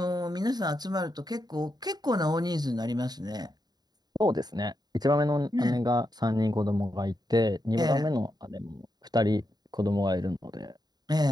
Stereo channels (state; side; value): late; left; 0.20 ms